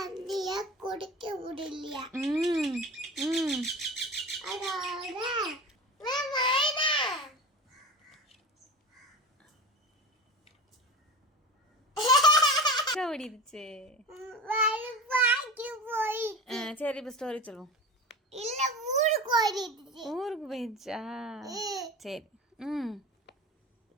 குடிக்க முடியலையா. அதோட ஓடிடுச்சு. போய் சரி இப்ப ஸ்டோரி சொல்லுவோம். இல்ல ஊருக்கு ஓடிடுச்சு. ஊருக்கு போயிடுச்சா? சரி.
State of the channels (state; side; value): normal; both; correlation 0.31